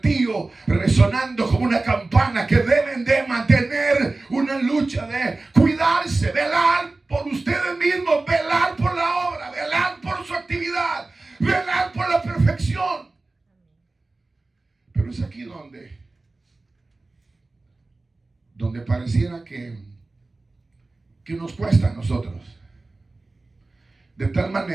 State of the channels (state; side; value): quieter; left; 3.3 dB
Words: resonando como una campana, que deben de mantener una lucha de cuidarse, velar por ustedes mismos, velar por la obra, velar por su actividad, velar por la perfección. Pero es aquí donde pareciera que nos cuesta a nosotros. De tal